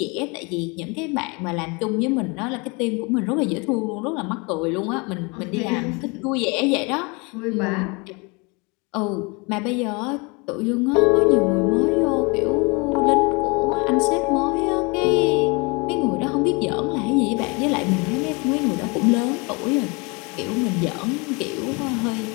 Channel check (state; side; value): quieter; right; 29.0 dB